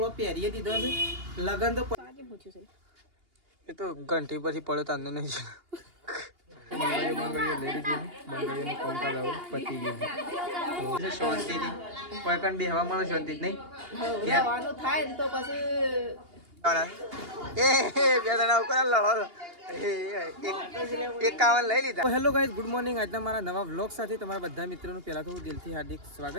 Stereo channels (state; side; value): late; left; 2.8 ms